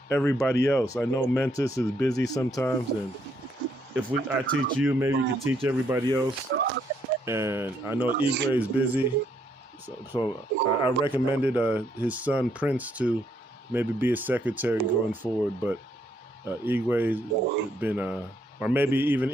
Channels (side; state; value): both; normal; correlation 0.72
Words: everybody else. I know Mentis is busy sometimes, and if I teach you, maybe you can teach everybody else. And I know Igwe is busy, so I recommended his son Prince to maybe be a secretary going forward. But Igwe has been, or maybe even